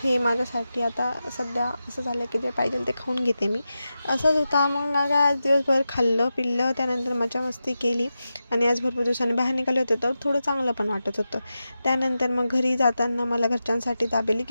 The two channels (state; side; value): inverted; both; correlation -0.91